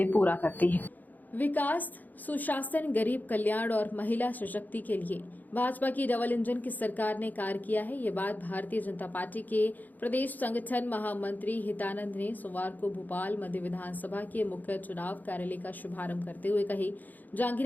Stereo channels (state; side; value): late; right; 0.083 ms